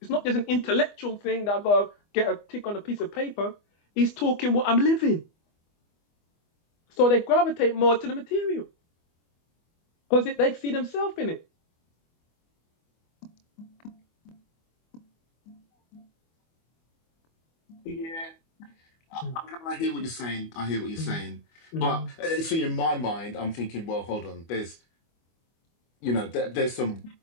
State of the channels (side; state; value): right; late; 25 ms